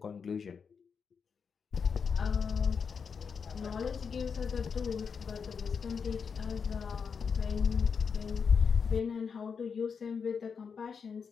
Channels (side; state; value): right; quieter; 6.0 dB